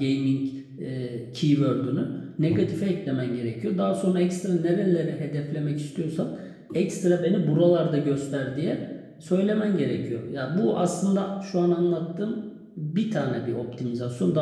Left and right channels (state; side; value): identical; both; correlation 1.00